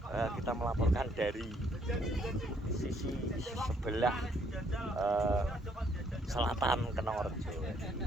kita melaporkan dari sisi sebelah selatan Kenongorjo.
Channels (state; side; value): normal; both; correlation 0.68